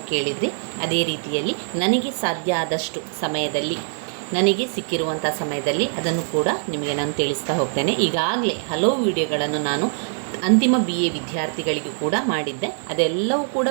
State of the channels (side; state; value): left; silent; 64 dB below the other